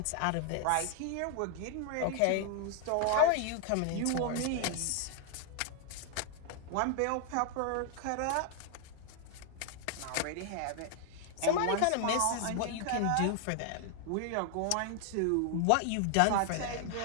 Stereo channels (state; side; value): different; both; correlation 0.00